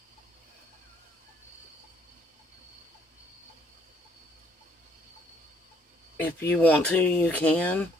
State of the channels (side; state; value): both; normal; correlation 0.66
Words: If you want to, you can.